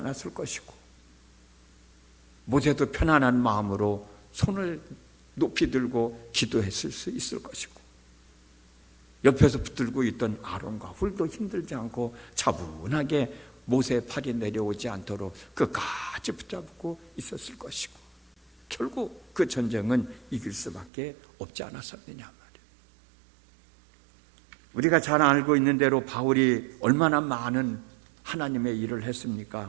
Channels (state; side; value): drops out; left; at 20.9 s